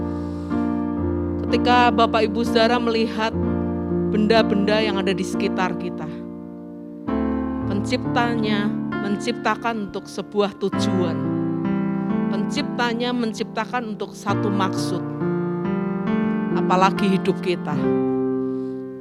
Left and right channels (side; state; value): both; identical; correlation 1.00